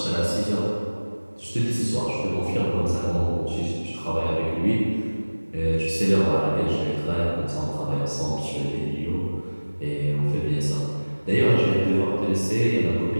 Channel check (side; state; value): both; inverted; correlation -1.00